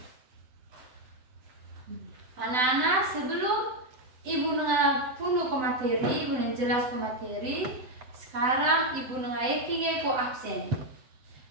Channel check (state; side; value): late; left; 7.9 ms